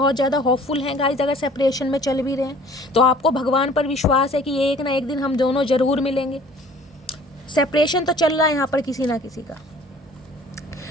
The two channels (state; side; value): normal; both; correlation 0.51